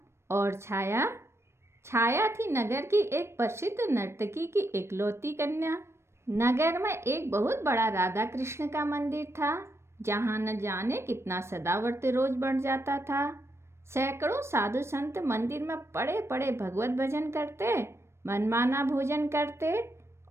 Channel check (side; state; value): left; late; 0.13 ms